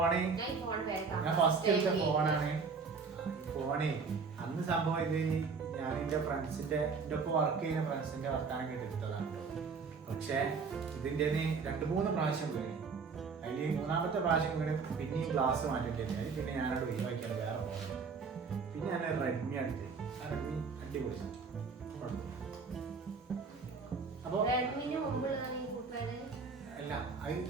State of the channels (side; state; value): left; quieter; 5.1 dB